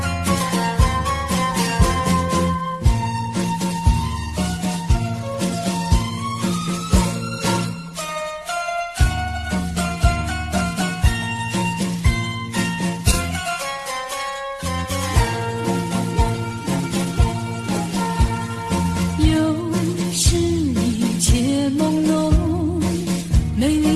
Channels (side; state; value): both; identical; correlation 1.00